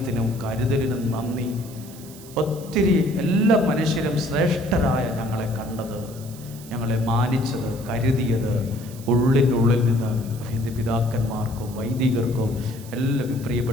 കരുതലിനും നന്ദി. ഒത്തിരി എല്ലാ മനുഷ്യരും ശ്രേഷ്ഠരായ ഞങ്ങളെ കണ്ടത്, ഞങ്ങളെ മാനിച്ചത്, കരുതിയത് ഉള്ളിനുള്ളിൽ നിന്ന് എൻ്റെ പിതാക്കന്മാർക്കും വൈദികർക്കും എല്ലാ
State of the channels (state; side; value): noise; right; hiss, 19 dB below the sound